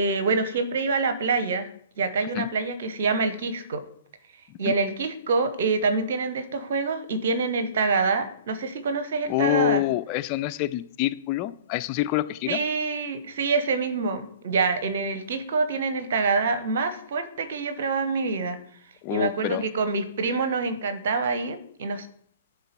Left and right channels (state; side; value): inverted; both; correlation -0.47